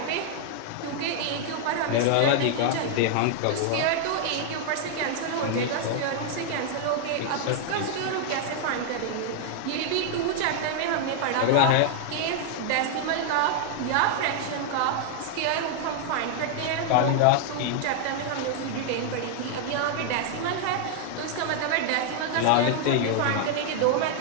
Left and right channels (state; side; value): different; both; correlation 0.00